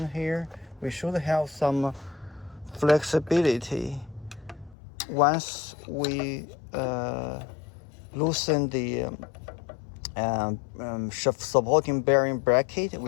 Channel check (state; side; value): drops out; right; at 4.8 s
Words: here. We should have some flexibility once we loosen the supporting bearing bracket.